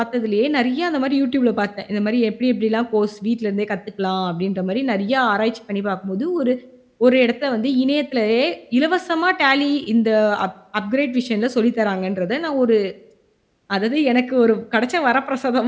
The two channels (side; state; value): both; identical; correlation 1.00